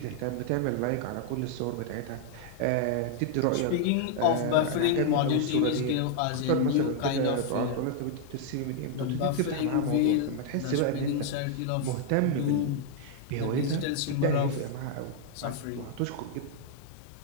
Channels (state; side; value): different; both; correlation 0.00